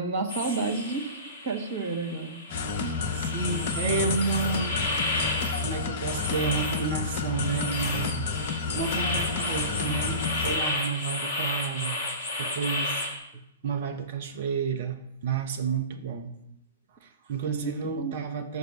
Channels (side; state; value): both; inverted; correlation -0.33